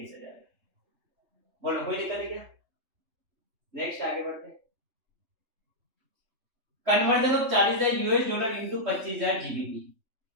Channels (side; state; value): left; late; 3.2 ms